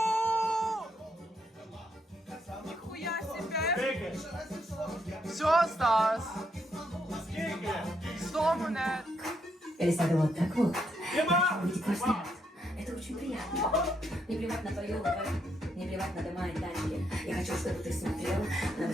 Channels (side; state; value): both; normal; correlation 0.77